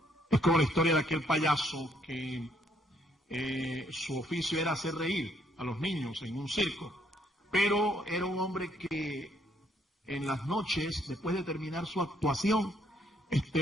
Es como la historia de aquel payaso que su oficio era hacer reír a los niños en un circo, pero era un hombre que en las noches, después de terminar su actuación,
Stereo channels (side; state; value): both; normal; correlation 0.69